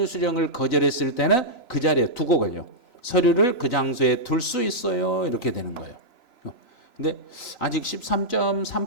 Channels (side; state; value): right; late; 3.0 ms